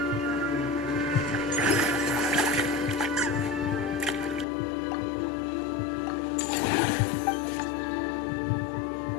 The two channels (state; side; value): drops out; right; at 4.5 s